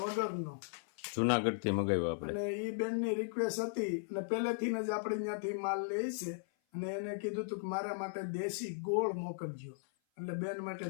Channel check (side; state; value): right; silent; 53 dB below the other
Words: જુનાગઢથી મગાવ્યો આપણે. અને એ બેનની રિક્વેસ્ટ હતી અને પહેલેથી જ આપણે ત્યાંથી માલ લે છે. અને એને કીધું હતું કે મારા માટે દેશી ગોળ મોકલજો. એટલે બેન માટે